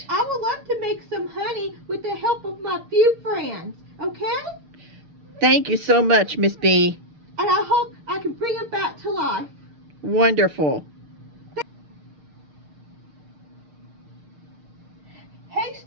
I would love to make some honey with the help of my few friends, okay? Thank you so much, Miss Bee. And I hope I can bring it back to life. Wonderful. Hey,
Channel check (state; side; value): late; left; 6.5 ms